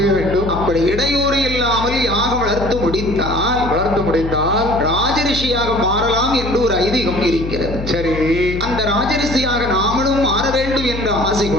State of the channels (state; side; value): noise; left; hum, 7 dB below the sound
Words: வேண்டும். அப்படி இடையூறு இல்லாமல் யாகம் வளர்த்து முடித்தால் ராஜரிஷியாக மாறலாம் என்று ஒரு ஐதீகம் ஐதீகம் இருக்கிறது. சரி, அந்த ராஜரிஷியாக நாமளும் மாற வேண்டும் என்ற ஆசை